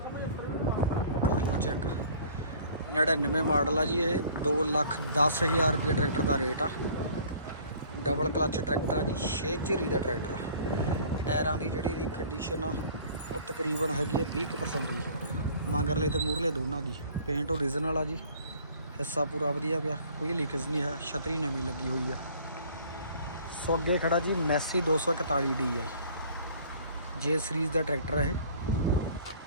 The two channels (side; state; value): both; inverted; correlation -0.52